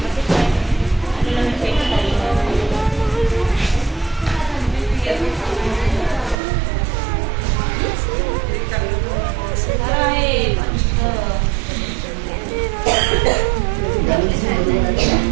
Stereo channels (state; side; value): drops out; left; at 6.4 s